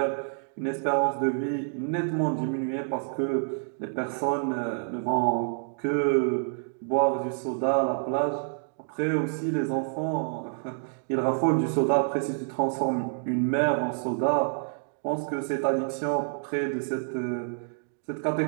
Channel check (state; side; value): silent; left; digital silence